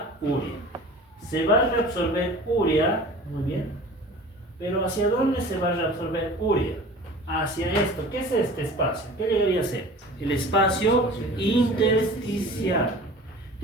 urea. Se va a reabsorber urea, muy bien, pero ¿hacia dónde se va a reabsorber urea? Hacia esto. ¿Qué es este espacio? ¿Qué debería ser? El espacio intersticial.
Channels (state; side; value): normal; both; correlation 0.41